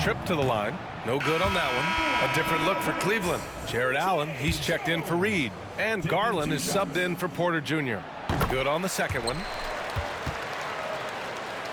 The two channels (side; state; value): both; identical; correlation 1.00